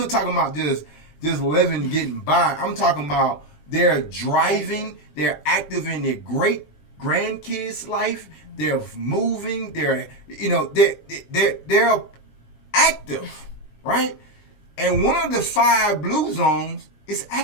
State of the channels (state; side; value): late; right; 20 ms